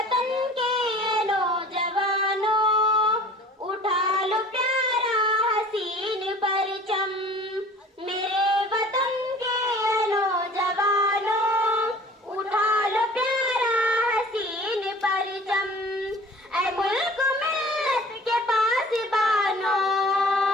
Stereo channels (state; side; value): normal; both; correlation 0.46